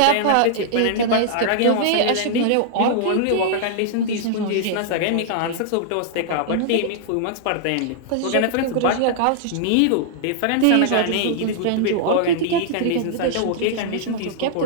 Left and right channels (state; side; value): different; both; correlation -0.01